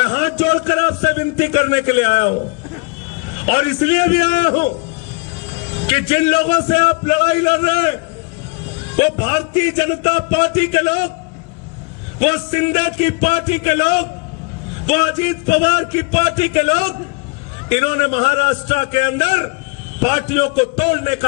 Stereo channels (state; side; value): quieter; right; 31.2 dB